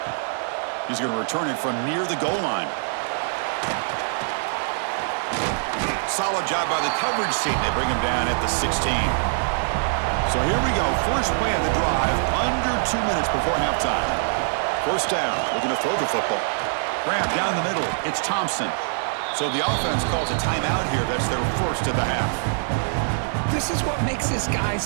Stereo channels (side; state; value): left; silent; 63 dB below the other